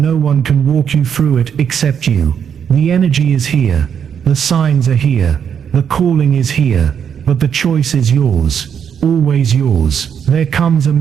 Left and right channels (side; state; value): left; quieter; 7.9 dB